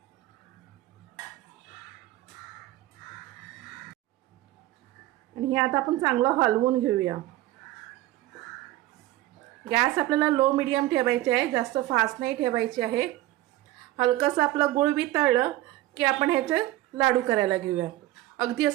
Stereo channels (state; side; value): quieter; left; 16.4 dB